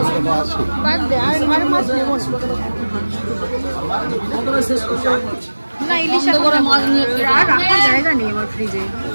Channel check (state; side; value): inverted; both; correlation -1.00